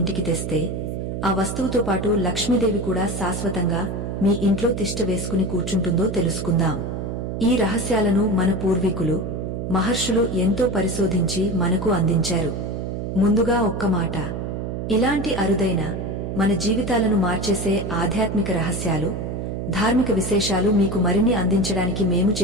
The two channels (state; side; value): noise; right; hum, 4 dB below the sound